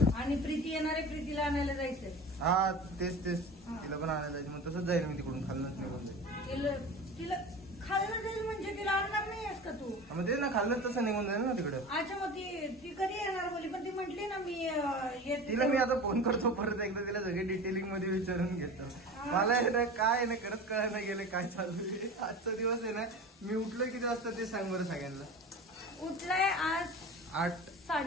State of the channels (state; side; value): normal; both; correlation 0.33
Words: आणि प्रीती येणारे, प्रीतीला आणायला जायचंय. हा तेच हा. तिला पण आणायला जायचं. मग तसंच जाईल मी तिकडून खाल्लंच निघून जाईल. तिला खायला जाईल म्हणजे तिला आणणार नाहीयेस का तू? मग ते ना खाल्लं तसं निघून जाईल ना तिकडं. अच्छा मग ती कधी येणार बोली? पण ती म्हटली ना मी येते. तिला मी आता फोन करतो परत एकदा. तिला सगळे डिटेलिंग मध्ये विचारून घेतो. मला आहे ना काय ना खरंच कळायला गेले काय चालू आहे. आजचा दिवस आहे ना. मी उठलोय किती वाजता ते सांग बरं सगळ्यांना. उठलाय आज